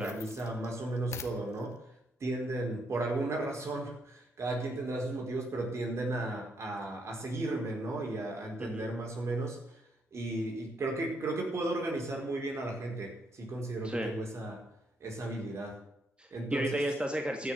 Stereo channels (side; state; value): both; normal; correlation 0.75